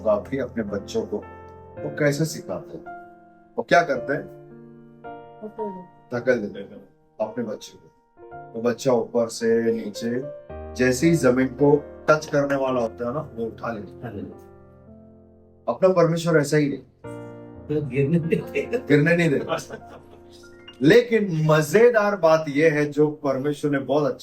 की अपने बच्चों को वो कैसे सिखाते हैं। वो क्या करते हैं? धकेल देते हैं अपने बच्चे को। तो बच्चा ऊपर से नीचे जैसे ही जमीन को टच करने वाला होता है ना, वो उठा लेता है। अपना परमेश्वर ऐसा ही नहीं, गिरने नहीं देता। लेकिन मजेदार बात यह है जो परमेश्वर ने बहुत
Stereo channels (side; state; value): both; identical; correlation 1.00